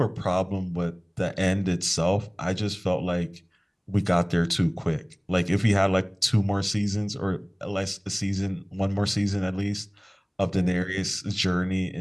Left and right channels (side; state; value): both; identical; correlation 1.00